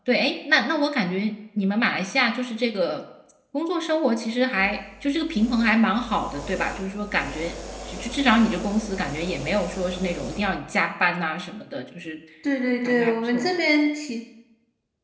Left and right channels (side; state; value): both; identical; correlation 1.00